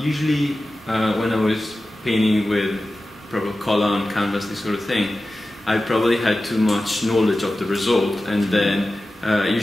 when I was painting with proper color on canvas, this sort of thing, I probably had too much knowledge of the result, and then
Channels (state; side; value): normal; both; correlation 0.94